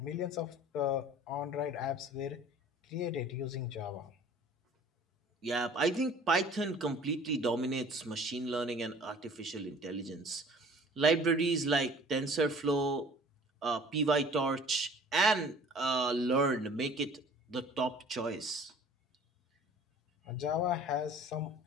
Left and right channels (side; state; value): both; normal; correlation 0.49